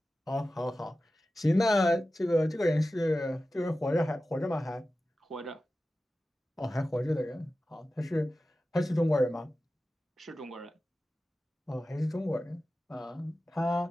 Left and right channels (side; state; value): both; normal; correlation 0.94